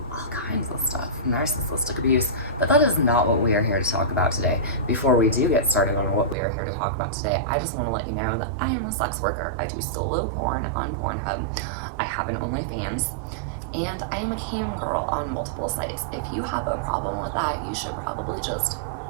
all kinds of stuff, narcissistic abuse. But that is not what we are here to talk about today. Before we do get started on what we are here to talk about today, I just want to let you know that I am a sex worker. I do solo porn on Pornhub. I have an OnlyFans, and I am a cam girl on multiple sites. If you have a problem with that, you should probably just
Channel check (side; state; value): left; drops out; at 6.4 s